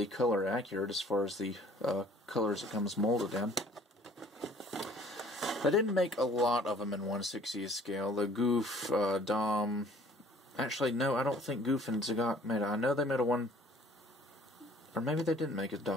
color accurate as far as the colors it comes molded in. They didn't make a lot of them in 1/60th scale. The Goof, Dom... Actually, no, I don't think Goof and Zagat made it. I know they made a one... Or maybe they didn't make a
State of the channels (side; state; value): both; normal; correlation 0.55